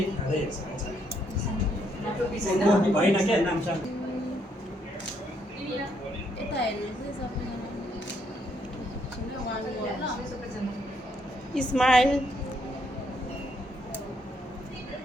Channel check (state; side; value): normal; both; correlation 0.73